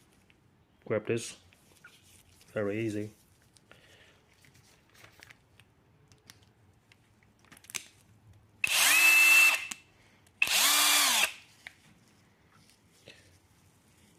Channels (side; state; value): both; identical; correlation 1.00